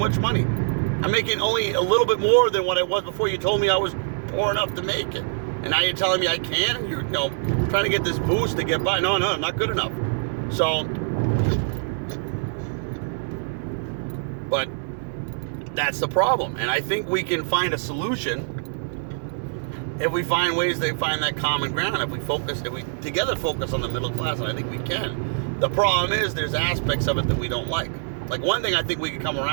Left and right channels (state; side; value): silent; left; digital silence